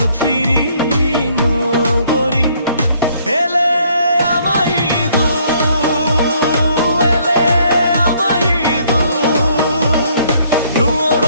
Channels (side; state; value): both; inverted; correlation -0.65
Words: ফিরি নগরী এলে আমায় দু এলে আমায় দু নুয়ো